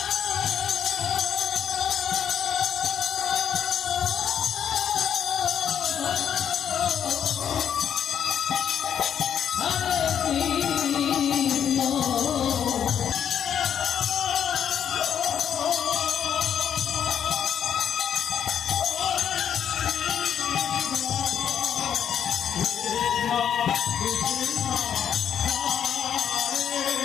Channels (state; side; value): quieter; right; 8.8 dB